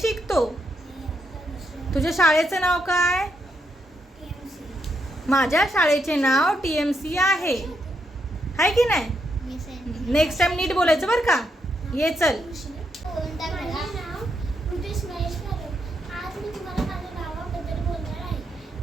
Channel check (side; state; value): both; normal; correlation 0.79